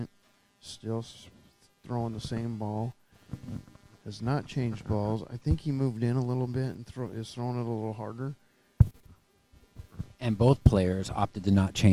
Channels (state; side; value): identical; both; correlation 1.00